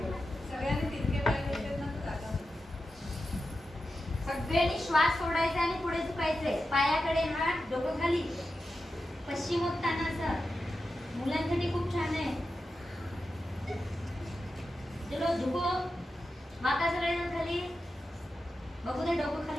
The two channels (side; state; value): both; normal; correlation 0.91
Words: सगळ्यांनी श्वास सोडायचा आणि पुढे झुकायचे. पायाकडे हात, डोकं खाली. पश्चिमोत्तानासन मुलांसाठी खूप छान आहे. चलो झुको. माता सगळेजण खाली. बघू दे डोकं